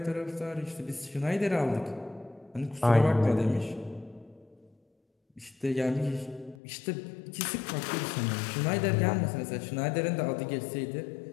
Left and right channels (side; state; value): right; drops out; at 6.6 s